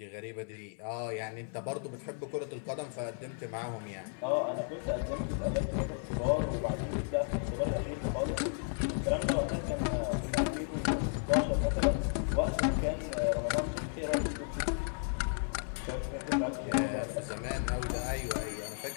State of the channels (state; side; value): silent; right; 55 dB below the other